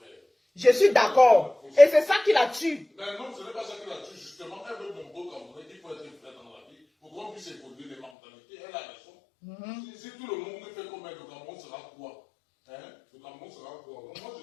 Je suis d'accord. Et c'est ça qui la tue. Mais non, ce n'est pas ça qui la tue, justement. Elle veut mon beau Camerounais qu'il faut être vrai dans la vie pour qu'on puisse évoluer les mentalités. Elle a raison. Si tout le monde fait comme elle, le Cameroun sera quoi? Le Cameroun sera quoi? Donc moi,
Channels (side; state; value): right; drops out; at 8.1 s